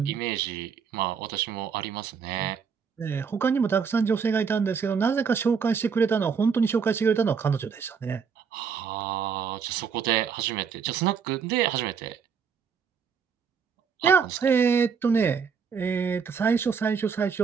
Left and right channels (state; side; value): quieter; left; 6.3 dB